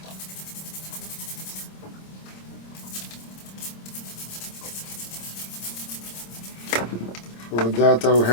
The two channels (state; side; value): late; right; 26 ms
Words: For that I'll